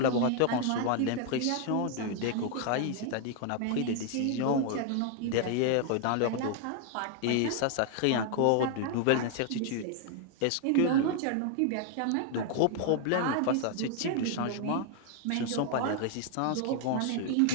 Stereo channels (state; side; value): different; both; correlation 0.00